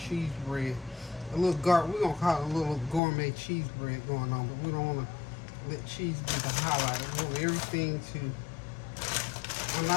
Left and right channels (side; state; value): right; drops out; at 3.0 s